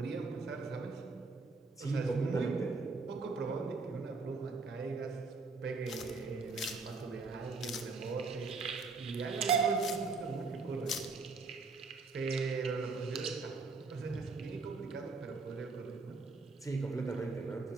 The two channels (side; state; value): left; quieter; 4.1 dB